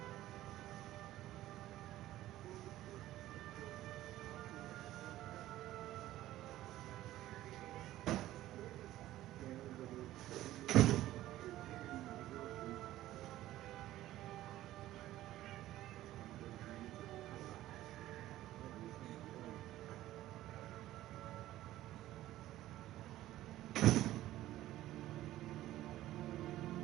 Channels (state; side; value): quieter; left; 14.8 dB